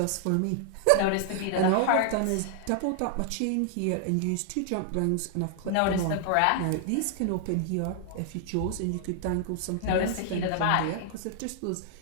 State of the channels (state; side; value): different; both; correlation 0.00